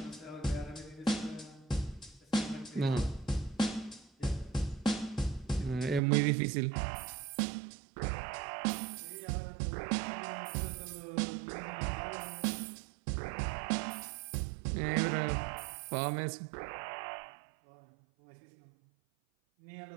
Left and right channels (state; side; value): drops out; left; at 6.0 s